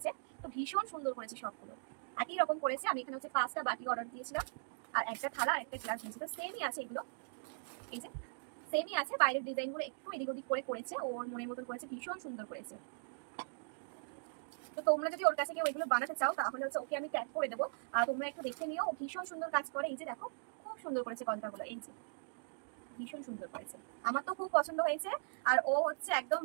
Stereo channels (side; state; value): left; silent; digital silence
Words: তো ভীষণ সুন্দর করেছে সবগুলো, একই রকম করেছে। আমি এখানে হচ্ছে 5টা বাটি অর্ডার দিয়েছিলাম, আর একটা থালা আর একটা গ্লাস দিয়েছি। তো সেমই আছে এগুলো, এই যে সেমই আছে, বাইরের ডিজাইনগুলো একটু এদিক ওদিক করে করেছে, ওর মনের মতন করেছে, ভীষণ সুন্দর করেছে। তো তোমরা যদি ওর কাছে কেউ এগুলো বানাতে চাও তাহলে হচ্ছে ওকে আমি ট্যাগ করে দেবো, তোমরা একটু দেখে নিও, ও ভীষণ সুন্দর কাজ করে। এই যে দেখো খুব সুন্দর করেছে কলকাগুলো, এই যে ভীষণ সুন্দর করেছে, আমার তো খুব পছন্দ হয়েছে। আর ও হচ্ছে একদম